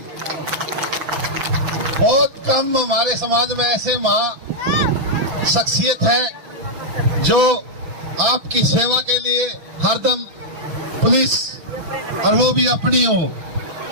बहुत कम हमारे समाज में ऐसे महा शख्सियत है जो आपकी सेवा के लिए हरदम पुलिस, और वो भी अपनी हो,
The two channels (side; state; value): left; late; 6.3 ms